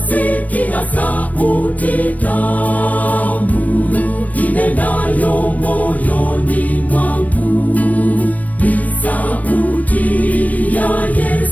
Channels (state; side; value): late; right; 0.072 ms